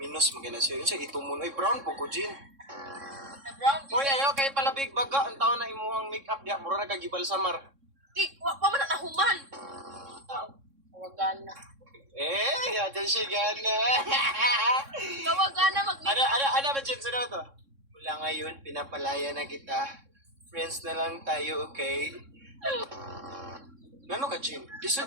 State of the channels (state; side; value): late; left; 3.6 ms